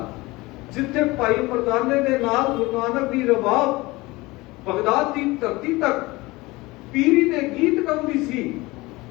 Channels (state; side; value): quieter; right; 21.6 dB